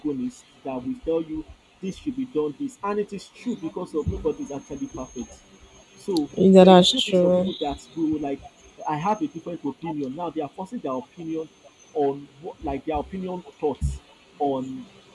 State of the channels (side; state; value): both; identical; correlation 1.00